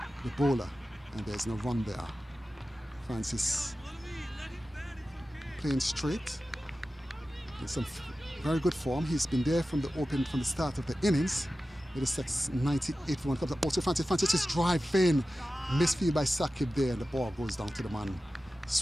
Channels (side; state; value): both; normal; correlation 0.94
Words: bowler, and there's no run there. Francis playing straight in some very good form. He's been there from the start of the innings. Middlesex 98 for 1 comes up also Francis is driving, misfield by Sakib there, and the ball goes down to the man